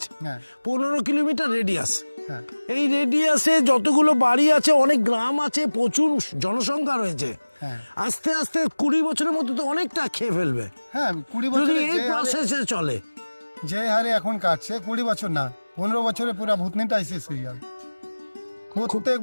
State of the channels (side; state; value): both; inverted; correlation -1.00